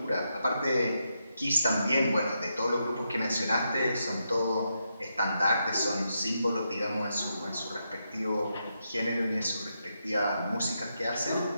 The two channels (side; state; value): both; inverted; correlation -0.83